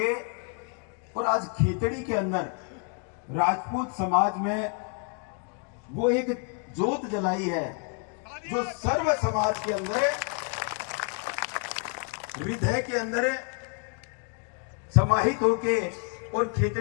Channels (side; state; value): right; quieter; 39.7 dB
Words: और आज खेतड़ी के अंदर राजपूत समाज में वो एक जोत जलाई है जो सर्व समाज के अंदर, हृदय के अंदर समाहित होके और